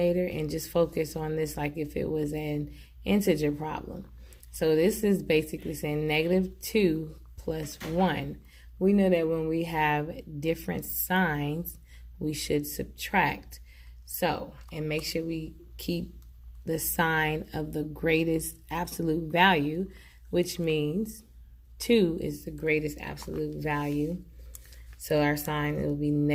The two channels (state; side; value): identical; both; correlation 1.00